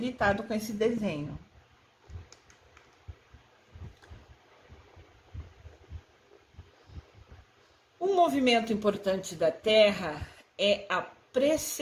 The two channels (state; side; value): identical; both; correlation 1.00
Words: com esse desenho. Um movimento importante da Terra é a